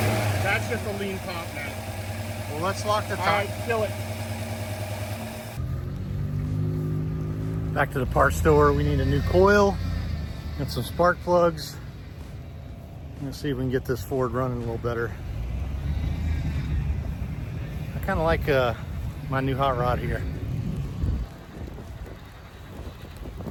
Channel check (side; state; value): both; identical; correlation 1.00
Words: That's just a lean pop now. Well, let's lock the top. All right, fill it. Back to the parts store. We need a new coil and some spark plugs. Let's see if we can get this Ford running a little better. I kind of like my new hot rod here.